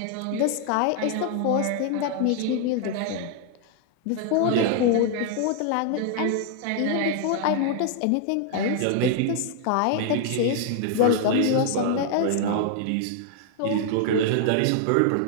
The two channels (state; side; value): different; both; correlation 0.00